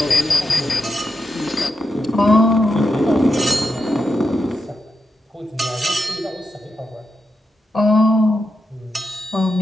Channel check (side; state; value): both; normal; correlation 0.86